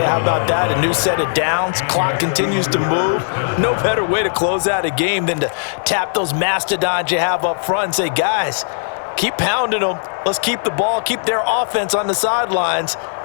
how about that? A new set of downs. Clock continues to move. No better way to close out a game than to tap those mastodons you have up front and say, guys, keep pounding them. Let's keep the ball, keep their offense on the sidelines,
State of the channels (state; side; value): silent; right; digital silence